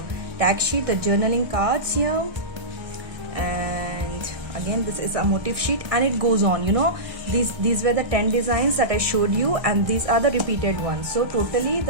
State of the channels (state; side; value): late; left; 1.3 ms